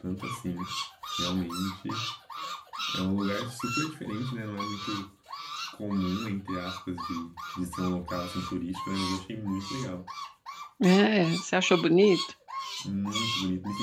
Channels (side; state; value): both; identical; correlation 1.00